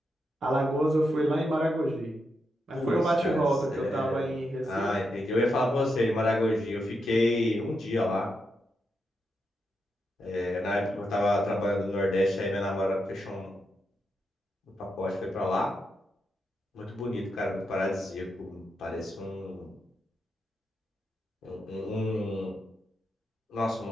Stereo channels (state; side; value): normal; both; correlation 0.84